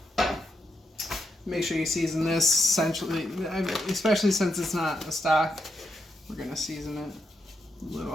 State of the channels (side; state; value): both; normal; correlation 0.82